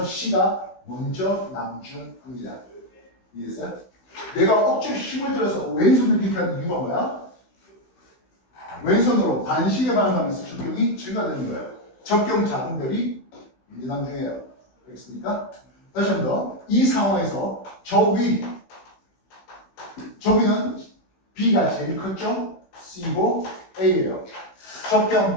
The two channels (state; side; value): late; right; 16 ms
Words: C가 먼저 남중합니다. 이해했어요? 내가 억지로 힘을 들어서 왼손을 이렇게 하는 이유가 뭐야? 왼손으로 반시계 반응하면서 적경이 증가되는 거예요. 적경 작은 별이 먼저 남중해요. 알겠습니까? 다시 한 번 더. 이 상황에서 저위는 B가 제일 컸죠? C고 A예요.